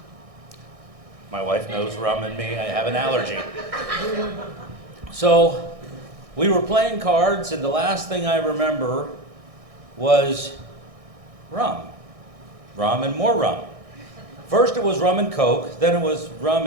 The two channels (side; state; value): left; late; 1.6 ms